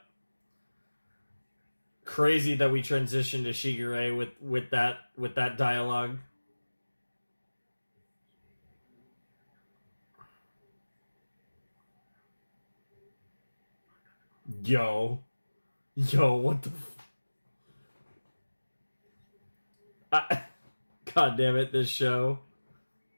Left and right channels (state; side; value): inverted; both; correlation -1.00